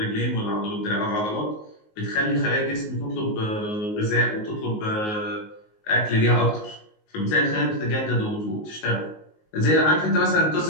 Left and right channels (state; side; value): late; right; 19 ms